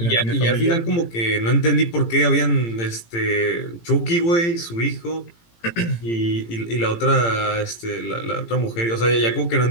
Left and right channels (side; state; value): right; late; 18 ms